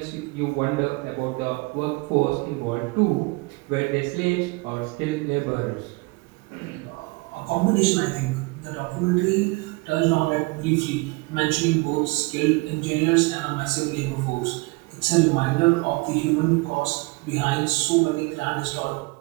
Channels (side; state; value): left; quieter; 26.0 dB